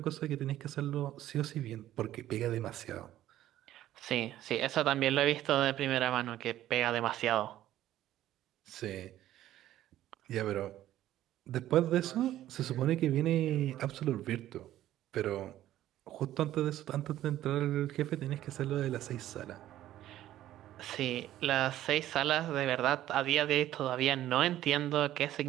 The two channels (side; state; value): left; quieter; 13.3 dB